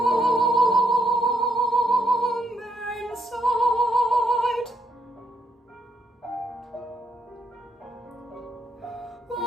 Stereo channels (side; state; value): both; normal; correlation 0.75